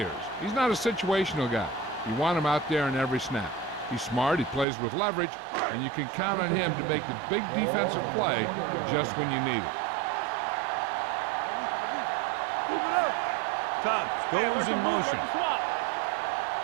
He's not a situational guy. You want him out there in every snap. He's smart, he plays with leverage, and you can count on him to make the big defensive play just when you need it. Get some, get some. Are we? Move it up. Tubbs goes in motion. Let's swap.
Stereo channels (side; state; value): left; drops out; at 4.7 s